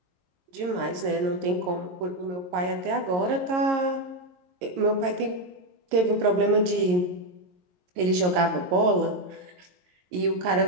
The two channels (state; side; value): late; left; 22 ms